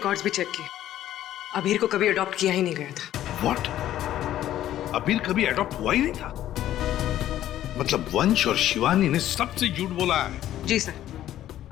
भी चेक किए। अबीर को कभी अडॉप्ट किया ही नहीं गया था। व्हाट? अबीर कभी अडॉप्ट हुआ ही नहीं था? मतलब वंश और शिवानी ने सबसे झूठ बोला है। जी सर,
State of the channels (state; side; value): quieter; right; 12.6 dB